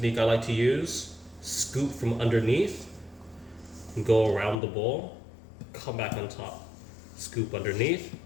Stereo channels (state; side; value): drops out; right; at 4.5 s